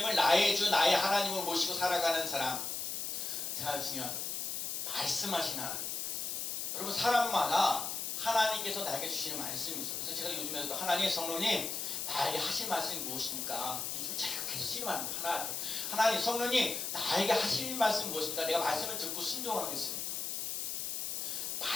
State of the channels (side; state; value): left; noise; hiss, 3 dB below the sound